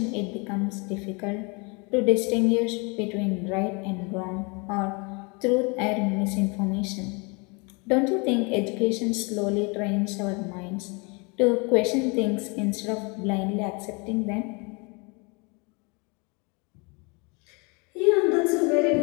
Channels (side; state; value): right; quieter; 30.6 dB